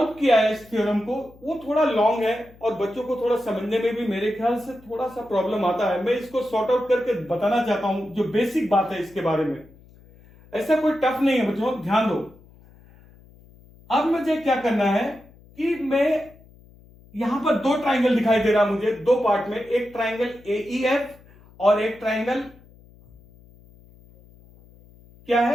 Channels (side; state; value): left; noise; hum, 25 dB below the sound